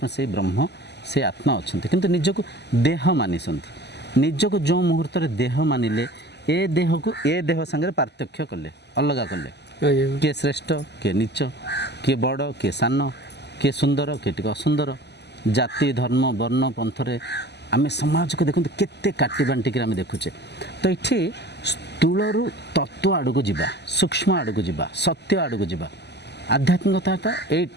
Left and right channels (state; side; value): late; right; 0.50 ms